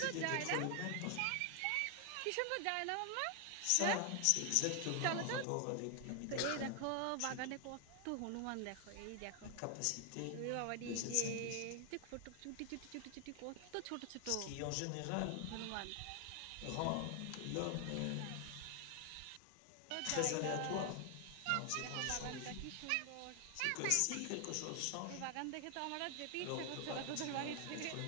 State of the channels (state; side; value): different; both; correlation 0.00